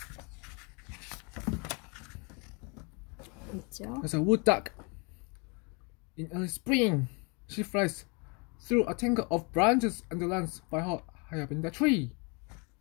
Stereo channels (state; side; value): quieter; right; 32.2 dB